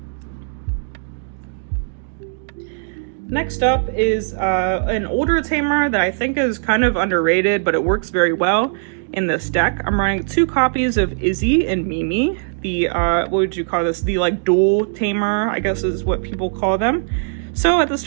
Next up is an older tamer that I think is kind of underrated, but it works very well in this deck. I'm running 2 copies of Izzy and Mimi, the, what would you call this? The like dual tamer, I guess is what people call them. So at the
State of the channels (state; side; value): silent; left; digital silence